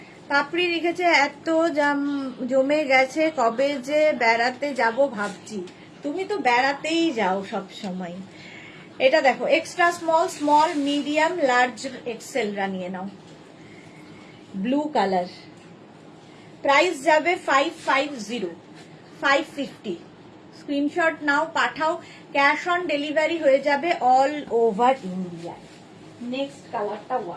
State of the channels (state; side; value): identical; both; correlation 1.00